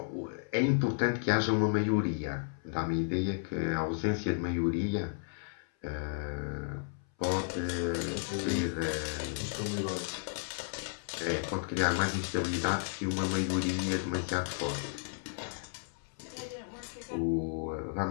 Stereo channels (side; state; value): right; silent; 56 dB below the other